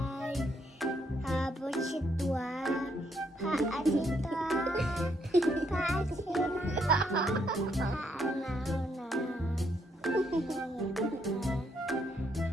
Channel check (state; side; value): normal; both; correlation 0.74